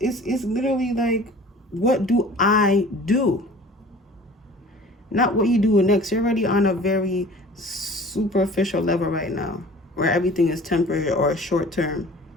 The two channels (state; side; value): normal; both; correlation 0.45